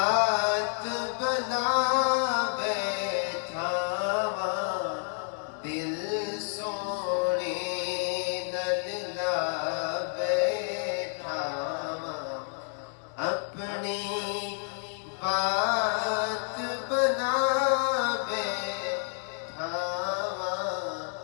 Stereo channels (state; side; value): silent; right; digital silence